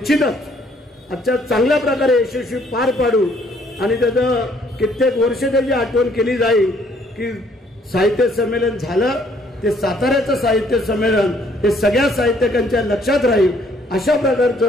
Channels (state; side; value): normal; both; correlation 0.64